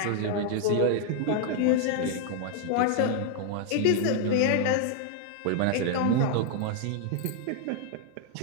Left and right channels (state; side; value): different; both; correlation 0.00